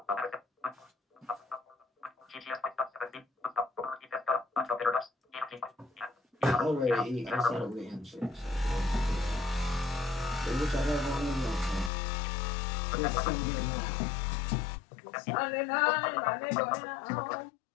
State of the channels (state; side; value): drops out; right; at 11.9 s